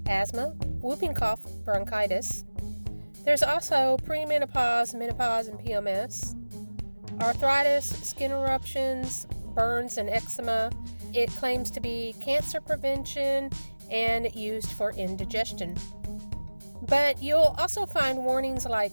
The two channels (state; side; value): inverted; both; correlation -1.00